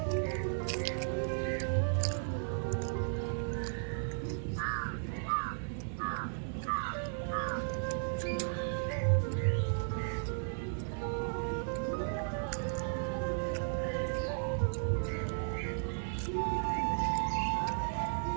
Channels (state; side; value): silent; left; 54 dB below the other